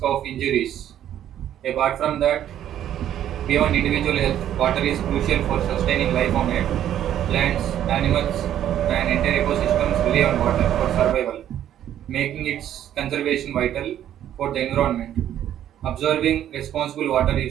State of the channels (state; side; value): quieter; left; 11.1 dB